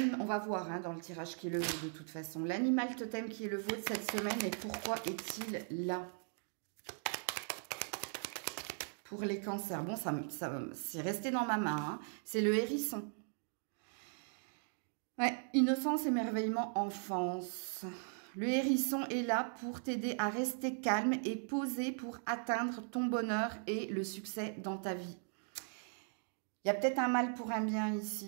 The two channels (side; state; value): left; silent; 52 dB below the other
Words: on va voir hein, dans le tirage qui est le vôtre de toute façon. L'animal totem qui est le vôtre cette semaine et pourquoi est-il là? Pour les cancers. Bon, ça c'est resté dans ma main. Hein. C'est le hérisson. Ouais, innocence, émerveillement, enfance. Le hérisson est là pour t'aider à rester calme et posé pour atteindre ton bonheur et le succès dans ta vie. Il y a peut-être un mal pour un bien